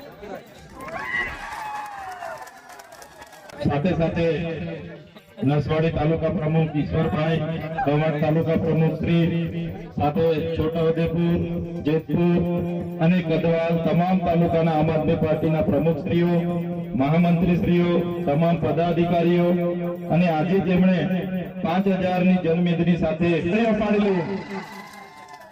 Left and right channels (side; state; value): both; identical; correlation 1.00